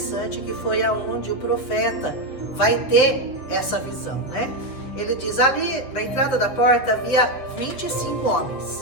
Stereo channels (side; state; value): right; late; 7.6 ms